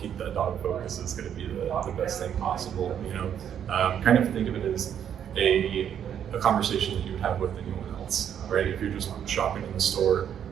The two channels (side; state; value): left; quieter; 9.1 dB